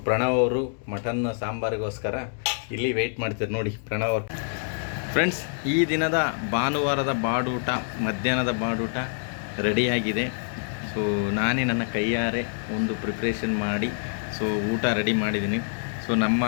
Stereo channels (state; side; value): silent; right; digital silence